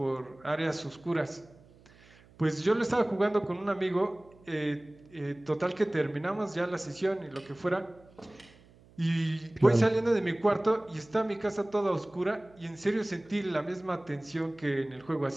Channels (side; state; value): right; noise; hum, 26 dB below the sound